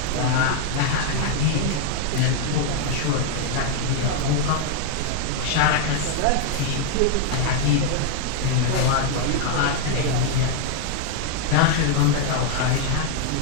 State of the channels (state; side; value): different; both; correlation 0.00